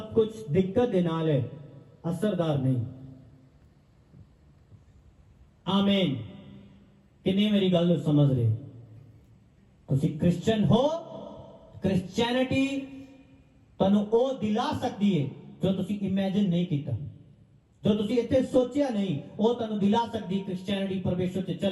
ਕੁਝ ਦਿੱਕਤ ਦੇ ਨਾਲ ਹੈ, असरदार नहीं। आमीन। किन्ने मेरी गल ਨੂੰ समझ रहे? ਤੁਸੀਂ क्रिश्चियन हो, क्रिश्चियनिटी ਤੁਹਾਨੂੰ ਉਹ ਦਿਲਾ ਸਕਦੀ ਹੈ ਜੋ ਤੁਸੀਂ ਇਮੇਜਿਨ ਨਹੀਂ ਕੀਤਾ, ਜੋ ਤੁਸੀਂ ਇੱਥੇ ਸੋਚਿਆ ਨਹੀਂ, ਉਹ ਤੁਹਾਨੂੰ ਦਿਲਾ ਸਕਦੀ ਕ੍ਰਿਸਚੀਅਨਿਟੀ, ਪਰਮੇਸ਼ਰ ਤੇ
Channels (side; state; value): both; identical; correlation 1.00